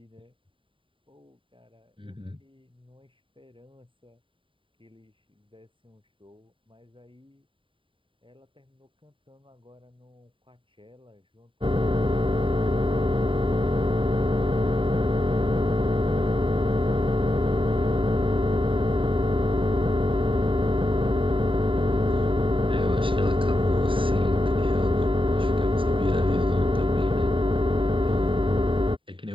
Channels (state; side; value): late; left; 0.25 ms